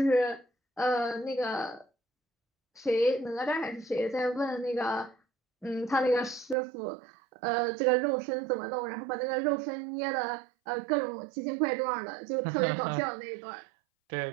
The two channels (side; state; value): left; drops out; at 6.6 s